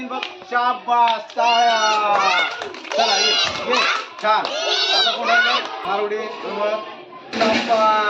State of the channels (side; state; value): both; identical; correlation 1.00